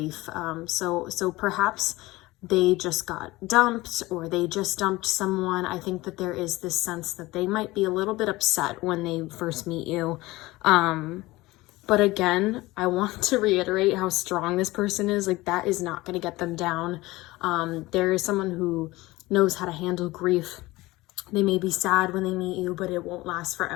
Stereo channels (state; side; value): quieter; right; 19.9 dB